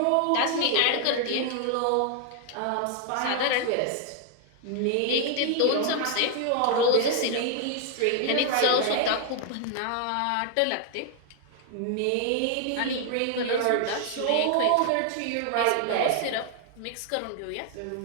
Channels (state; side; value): different; both; correlation 0.00